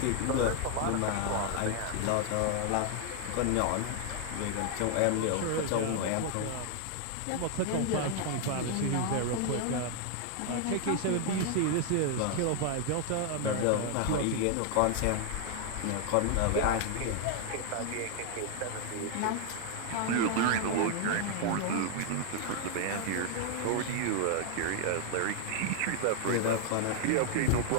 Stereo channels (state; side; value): different; both; correlation 0.00